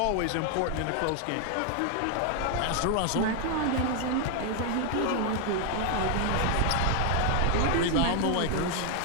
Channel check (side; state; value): both; different; correlation 0.00